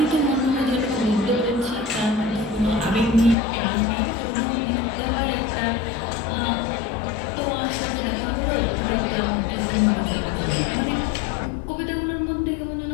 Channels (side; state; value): right; drops out; at 3.4 s